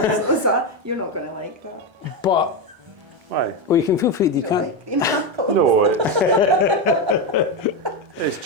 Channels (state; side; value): late; left; 1.3 ms